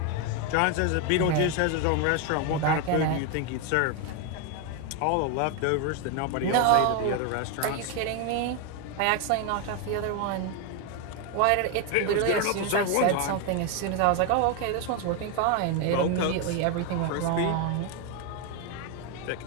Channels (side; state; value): both; different; correlation 0.02